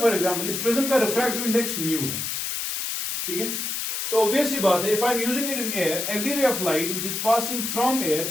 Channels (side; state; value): left; noise; hiss, 3 dB below the sound